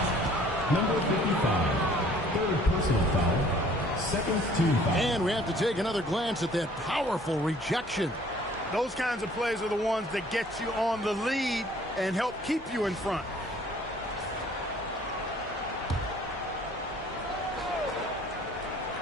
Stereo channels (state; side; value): normal; both; correlation 0.55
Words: Number 55, third personal foul, second team foul. And we have to take another glance at that powerful rejection. Those kinds of plays are the ones that get you on the lead and help keep you in front.